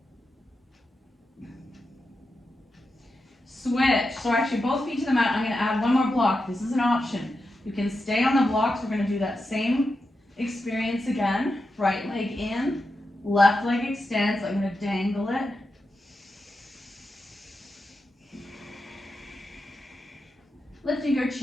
Switch. So actually both feet to the mat. I'm going to add one more block. This is an option. You can stay on the blocks. We're going to do that same experience again. Right leg in, left leg extends. I'm going to dangle it. Lifting your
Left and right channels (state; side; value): normal; both; correlation 0.88